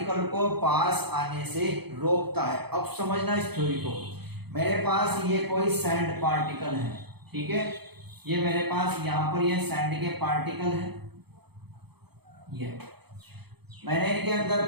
को पास आने से रोकता है। अब समझना इस थ्योरी को, मेरे पास ये कोई सैंड पार्टिकल है। ठीक है, ये मेरे पास यहाँ पर ये सैंड के पार्टिकल है, ये मैंने इनके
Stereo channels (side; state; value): left; late; 0.98 ms